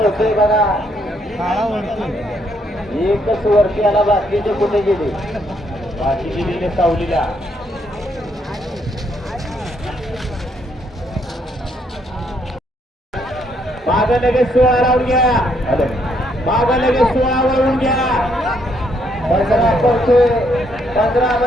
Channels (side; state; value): both; normal; correlation 0.72